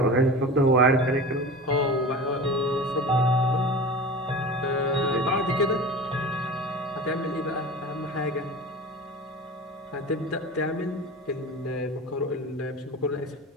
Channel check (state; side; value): normal; both; correlation 0.33